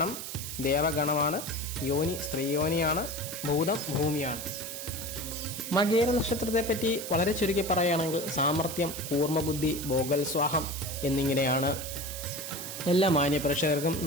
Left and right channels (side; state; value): right; noise; hiss, 8 dB below the sound